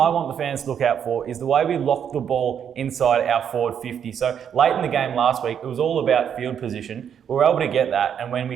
want the fans to look out for is the way we lock the ball inside our forward 50. So late in the game last week, it was all about field position. We were able to get that, and when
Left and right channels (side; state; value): left; quieter; 8.3 dB